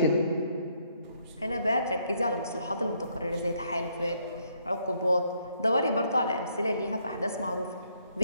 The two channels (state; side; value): inverted; both; correlation -0.71